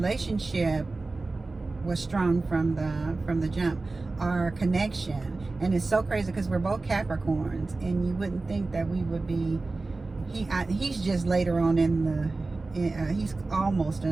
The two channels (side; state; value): left; quieter; 3.5 dB